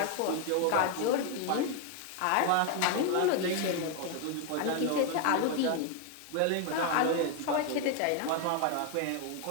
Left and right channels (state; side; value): different; both; correlation 0.01